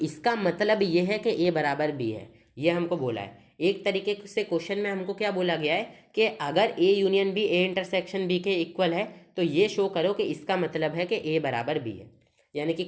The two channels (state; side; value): identical; both; correlation 1.00